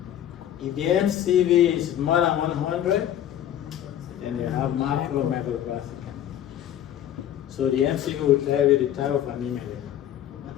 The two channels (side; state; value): right; quieter; 11.1 dB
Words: If the MCV is more than 100, then you have macromegaloblastic anemia. So the MCV will tell you the type of anemia.